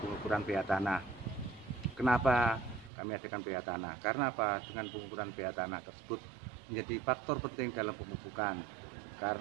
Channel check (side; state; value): left; drops out; at 2.9 s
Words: pengukuran pH tanah. Kenapa kami adakan pH tanah? Karena apa? Dengan pengukuran pH tanah tersebut menjadi faktor penting dalam pemupukan.